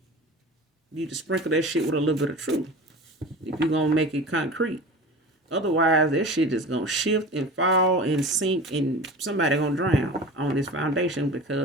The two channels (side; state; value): both; normal; correlation 0.34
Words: to sprinkle that shit with a little bit of truth. If you're gonna make it concrete. Otherwise, that shit is gonna shift and fall and sink, and somebody gonna drown on this foundation